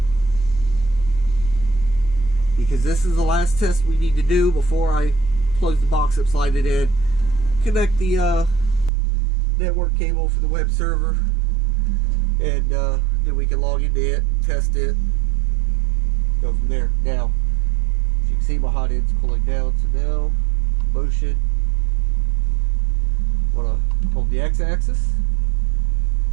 Because this is the last test we need to do before I close the box up, slide it in, connect the network cable for the web server, and then we can log into it and test it. Go from there. Now, as you can see, my hot end's cooling down, so now, motion. I want to hold the x-axis.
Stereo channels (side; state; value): left; drops out; at 8.9 s